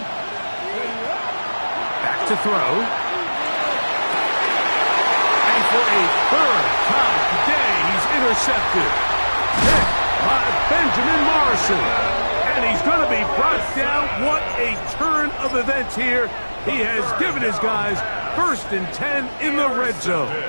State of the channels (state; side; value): inverted; both; correlation -1.00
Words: Back to throw. And for a 3rd time today, he's intercepted. Hit by Benjamin Morrison. And he's going to be brought down. What a turn of events here. He has given his guys 1st and 10 in the red zone.